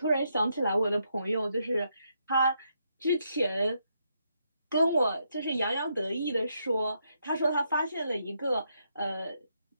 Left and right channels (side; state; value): both; inverted; correlation -0.78